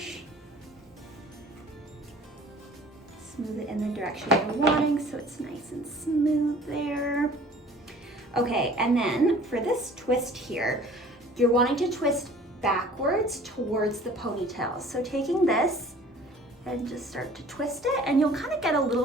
Smooth it in the direction you're wanting so it's nice and smooth there. Okay, and then for this twist here, you're wanting to twist backwards towards the ponytail. So taking this and just start to twist it, and you'll kind of get a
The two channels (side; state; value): both; normal; correlation 0.49